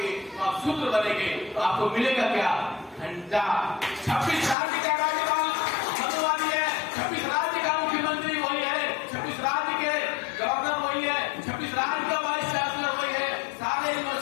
तो आप शूद्र बनेंगे। तो आपको मिलेगा क्या? घंटा। 26 राज्य का राज्यपाल मधुवानी है, 26 राज्य का मुख्यमंत्री वही है, 26 राज्य के गवर्नर वही है, 26 राज्य का वाइस चांसलर वही है, सारे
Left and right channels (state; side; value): drops out; right; at 4.5 s